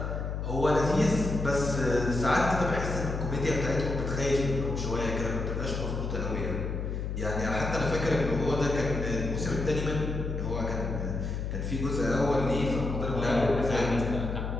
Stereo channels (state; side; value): noise; left; hum, 3 dB below the sound